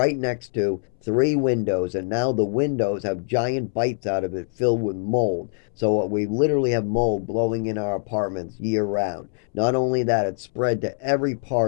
next to three windows, and now the windows have giant bites out of it filled with mold. So we literally have mold blowing in our apartments year round. Not only that, it's spread to every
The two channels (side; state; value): right; silent; 63 dB below the other